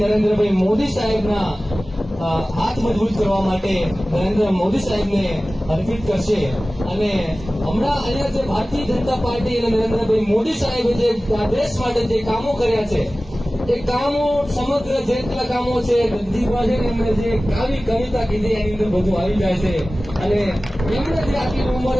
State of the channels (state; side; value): normal; both; correlation 0.97